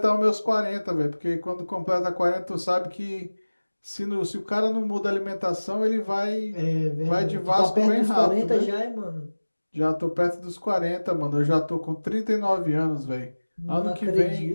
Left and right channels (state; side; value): inverted; both; correlation -1.00